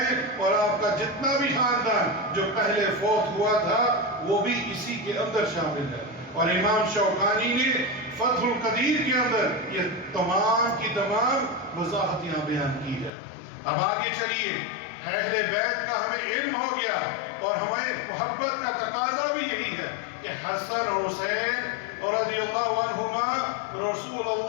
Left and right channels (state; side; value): drops out; right; at 13.1 s